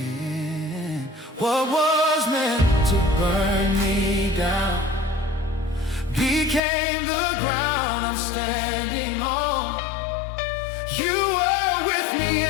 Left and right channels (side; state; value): right; drops out; at 6.6 s